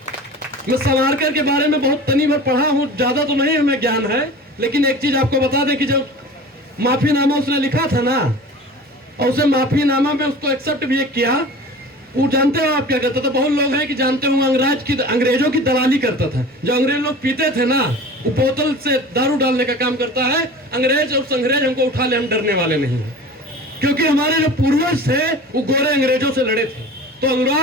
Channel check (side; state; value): both; normal; correlation 0.38